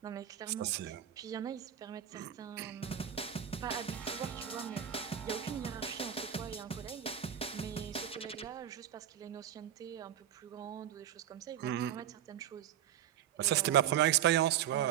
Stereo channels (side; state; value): left; quieter; 10.3 dB